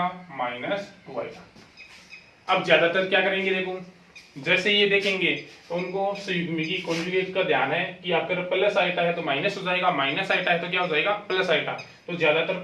माइनस 2 आइटा। अब ज्यादातर क्या करेंगे, देखो जैसे ये देखेंगे तो उनको संयुग्मी कॉन्जुगेट का ध्यान है कि आपका प्लस आइटा है तो माइनस हो जाएगा, माइनस आइटा है तो क्या हो जाएगा, प्लस आइटा। तो ज्यादातर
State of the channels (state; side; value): identical; both; correlation 1.00